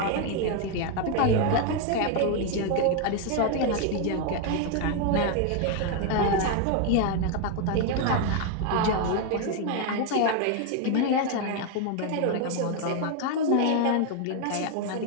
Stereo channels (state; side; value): different; both; correlation 0.01